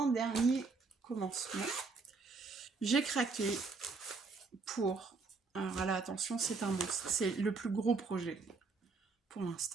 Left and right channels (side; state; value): left; quieter; 4.3 dB